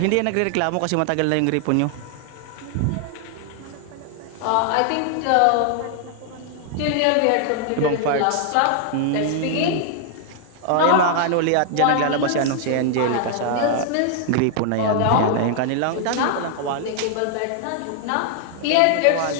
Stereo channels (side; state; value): both; different; correlation 0.00